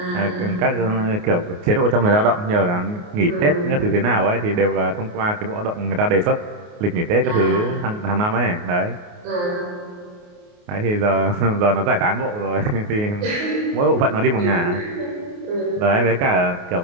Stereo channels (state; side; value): late; left; 28 ms